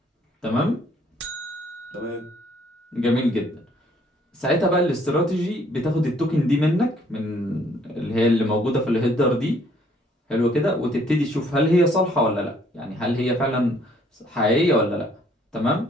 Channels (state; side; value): normal; both; correlation 0.63